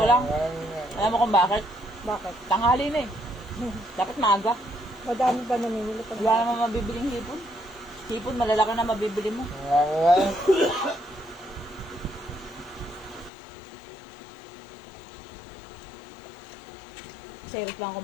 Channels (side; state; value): right; drops out; at 13.3 s